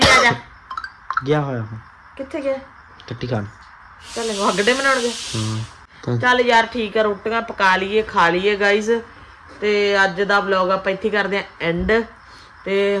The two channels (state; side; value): identical; both; correlation 1.00